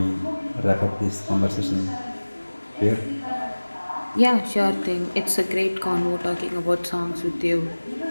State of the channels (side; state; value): both; inverted; correlation -1.00